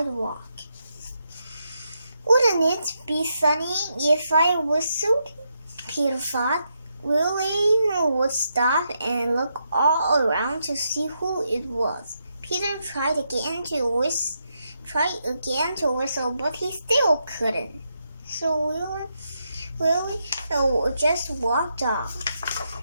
Wouldn't it be funny if I whistled? Peter thought. Willie would stop and look all around to see who it was. Peter tried again to whistle, but he still couldn't. So Willie just walked off.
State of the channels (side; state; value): both; inverted; correlation -0.82